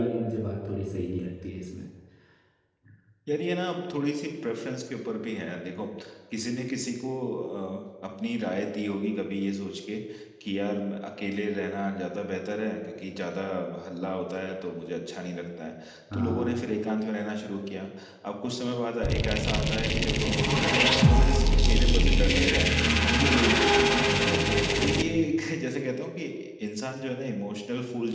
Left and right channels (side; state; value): both; identical; correlation 1.00